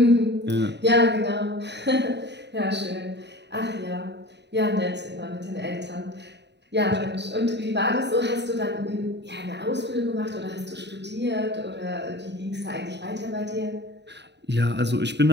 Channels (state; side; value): late; left; 0.50 ms